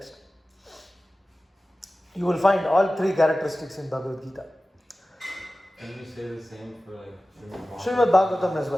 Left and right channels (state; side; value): normal; both; correlation 0.96